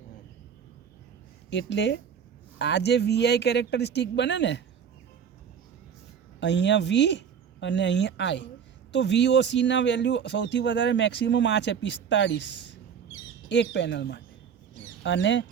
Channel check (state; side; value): quieter; left; 7.5 dB